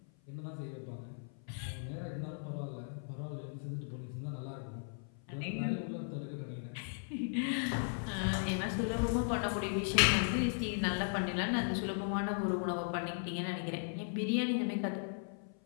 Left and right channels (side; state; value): right; silent; 53 dB below the other